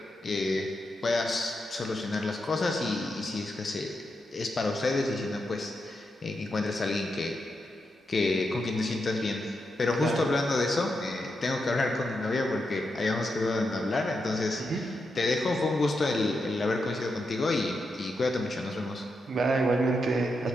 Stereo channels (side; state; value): both; normal; correlation 0.85